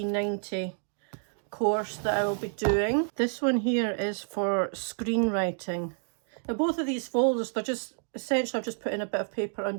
course that I will be doing. This one here is for screenwriting. Now both of these folders, they're just, essentially I've just put in a bit of paper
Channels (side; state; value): left; silent; 58 dB below the other